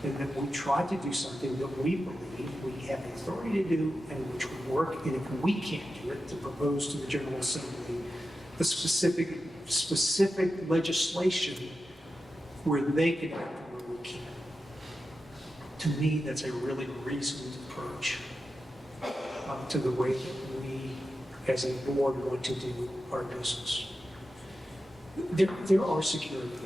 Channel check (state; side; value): normal; both; correlation 0.91